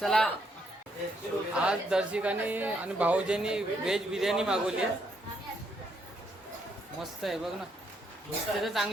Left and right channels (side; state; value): both; normal; correlation 0.74